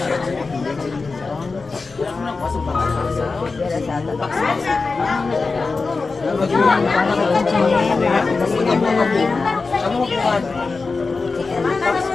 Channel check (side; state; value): right; quieter; 4.1 dB